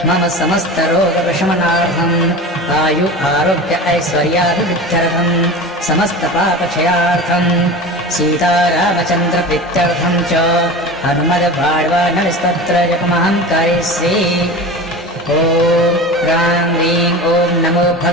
मम समस्त रोग प्रशमनार्थम् आयु आरोग्य ऐश्वर्याभिवृद्ध्यर्थम् समस्त पापक्षयार्थम् सीतारामचन्द्र प्रीत्यर्थम् च हनुमद्वाड्वानरस्तोत्र जपमहं करिष्ये। ओम ह्रां ह्रीं ओम नमो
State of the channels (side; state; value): both; normal; correlation 0.32